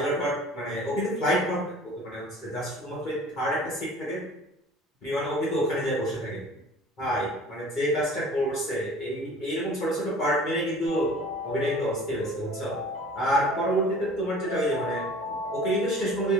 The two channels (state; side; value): normal; both; correlation 0.46